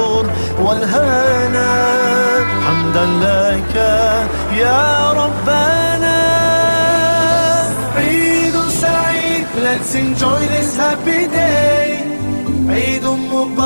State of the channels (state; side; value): inverted; both; correlation -1.00